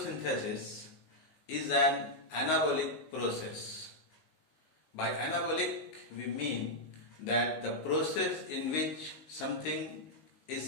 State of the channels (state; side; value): late; right; 19 ms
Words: is an anabolic process. By anabolic we mean that the process in which something